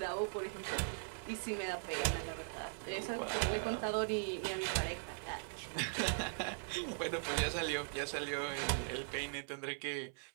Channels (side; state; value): left; silent; 51 dB below the other